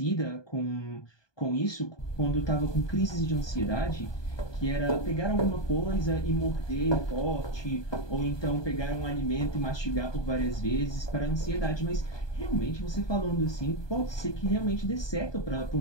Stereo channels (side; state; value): right; late; 1.2 ms